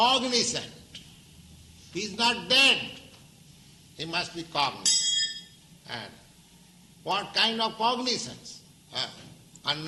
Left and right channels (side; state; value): both; identical; correlation 1.00